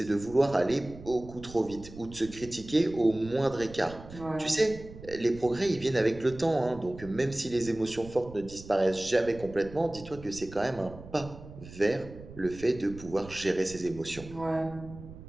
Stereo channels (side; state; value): right; noise; rumble, 16 dB below the sound